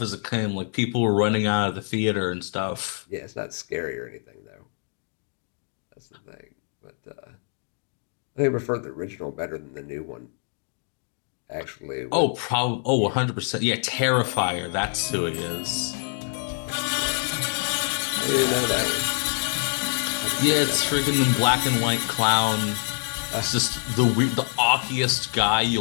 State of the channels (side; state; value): right; silent; 56 dB below the other